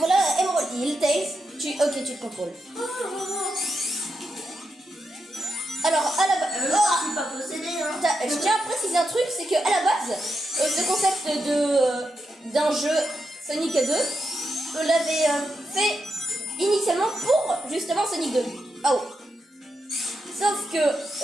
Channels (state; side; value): normal; both; correlation 0.85